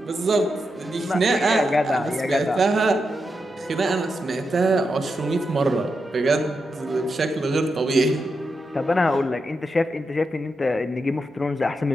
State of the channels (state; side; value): normal; both; correlation 0.86